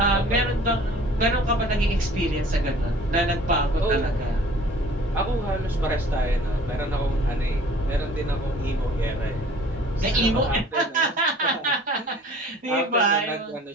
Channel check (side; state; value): both; normal; correlation 0.50